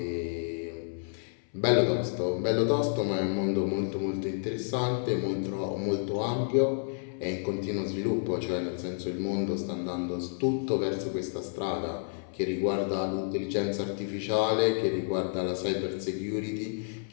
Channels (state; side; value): silent; right; 58 dB below the other